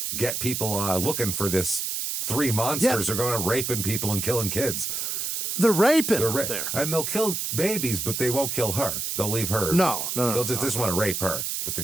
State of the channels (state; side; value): noise; right; hiss, 2 dB below the sound